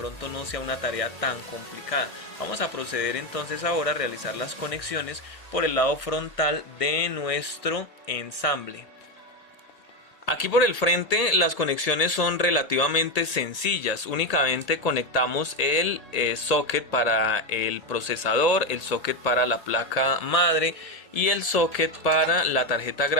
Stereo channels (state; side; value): late; right; 1.8 ms